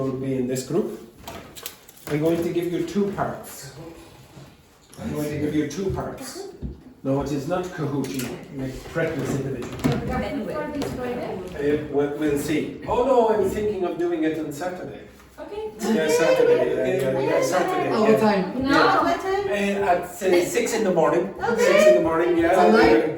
be in this group. I'm going to give you 2 parts. I'm going to give you 2 parts. No, it is not Kahoot, you make practice individual. For this Friday? We'll see. Oh no, I'm thinking of doing it on Saturday. Okay. Yeah, Saturday. Yeah, Saturday. All the time. No, Yeah. what time? At 6 in the morning. Okay. 6 in the morning, yeah.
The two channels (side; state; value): both; identical; correlation 1.00